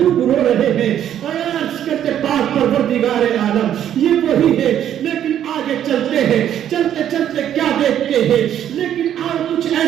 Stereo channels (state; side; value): quieter; left; 10.4 dB